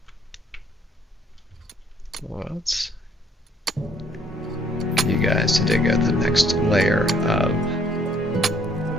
Let's get you guys to dig out the next layer of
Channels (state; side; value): normal; both; correlation 0.64